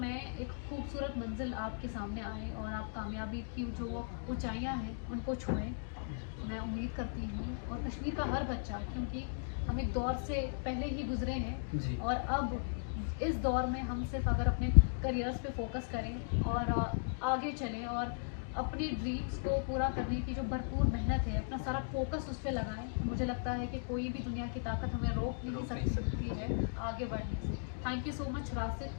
एक खूबसूरत मंजिल आपके सामने आए और आप कामयाबी की जो वो ऊंचाइयां हैं उनको छुएं, मैं उम्मीद करती हूँ। और कश्मीर का हर बच्चा, क्योंकि हम एक दौर से पहले ही गुजरे हैं जी। और अब इस दौर में हम सिर्फ अगर अपने करियर्स पे फोकस करें और आगे चलें और अपनी ड्रीम्स को पूरा करने की जो भरपूर मेहनत है, अपना सारा फोकस उस पर लगाएं, तो मुझे लगता है कि कोई भी दुनिया की ताकत हमें रोक नहीं सकती है आगे बढ़ने से। थैंक यू सो मच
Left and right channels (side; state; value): right; silent; digital silence